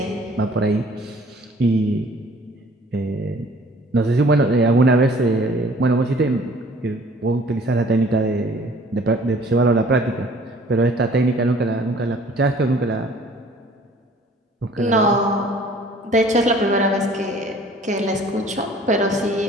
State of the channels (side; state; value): both; normal; correlation 0.53